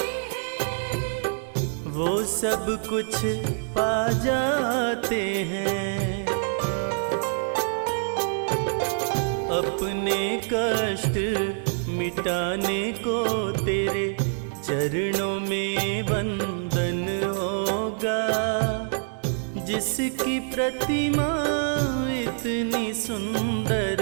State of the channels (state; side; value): silent; left; 59 dB below the other